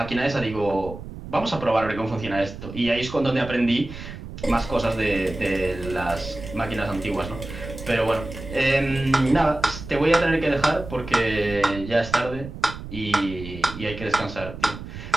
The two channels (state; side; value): noise; right; rumble, 11 dB below the sound